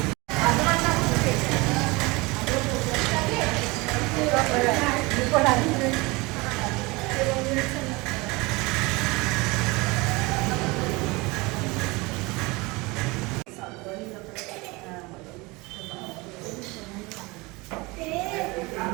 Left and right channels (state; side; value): quieter; left; 24.4 dB